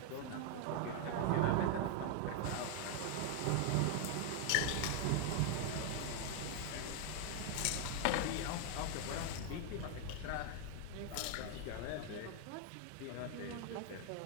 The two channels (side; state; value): both; different; correlation 0.00